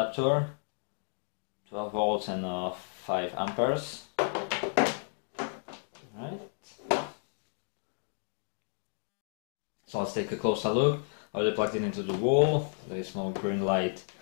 12 volts and 5 amperes. Right. So let's take a closer look. I already plugged it into the wall. There is small green light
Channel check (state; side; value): silent; right; digital silence